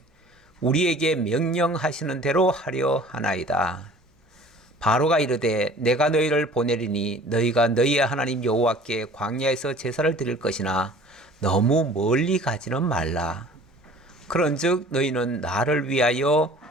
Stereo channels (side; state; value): both; normal; correlation 0.48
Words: 우리에게 명령하시는 대로 하려 하나이다. 바로가 이르되 내가 너희를 보내리니 너희가 너희의 하나님 여호와께 광야에서 제사를 드릴 것이나 너무 멀리 가지는 말라. 그런즉 너희는 나를 위하여